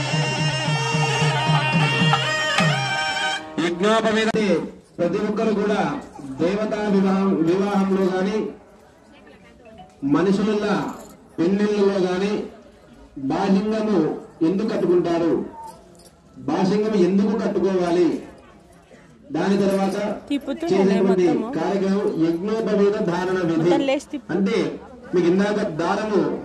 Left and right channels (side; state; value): both; identical; correlation 1.00